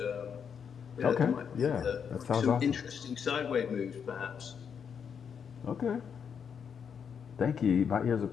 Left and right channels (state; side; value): quieter; right; 7.2 dB